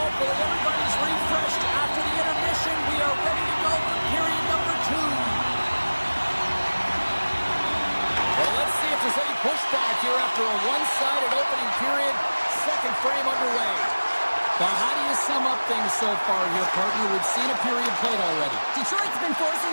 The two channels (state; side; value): inverted; both; correlation -1.00